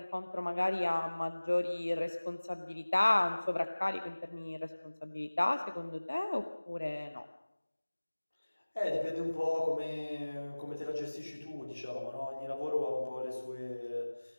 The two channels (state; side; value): inverted; both; correlation -1.00